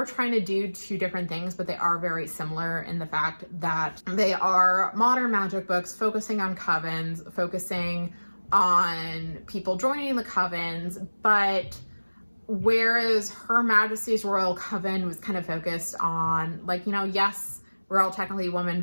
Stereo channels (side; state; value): both; inverted; correlation -1.00